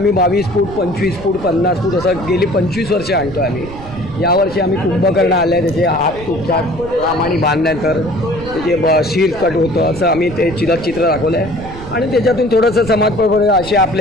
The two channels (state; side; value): noise; right; rumble, 14 dB below the sound